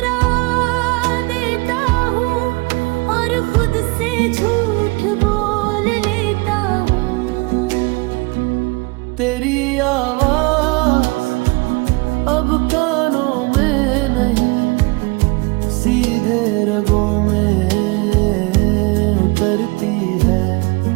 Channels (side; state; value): left; quieter; 26.5 dB